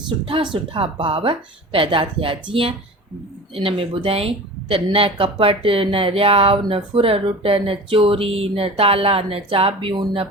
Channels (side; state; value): both; normal; correlation 0.36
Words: सुठा भाव पैदा थिया। जीअं इन में ॿुधाई त न कपट, न रियाव, न फुररुट, न चोरी, न ताला, न चाबियूं, न